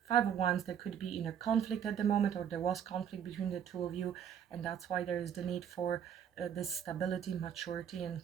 Five of Wands, there could be inner conflict at the moment, or there was conflict between the two of you, and that's why there is the need for this stability, maturity, and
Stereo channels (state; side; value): quieter; left; 8.8 dB